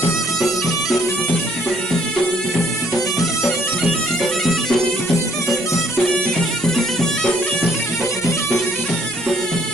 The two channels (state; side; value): normal; both; correlation 0.64